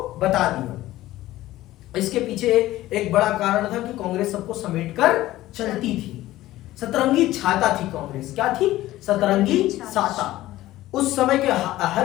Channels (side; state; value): right; quieter; 15.8 dB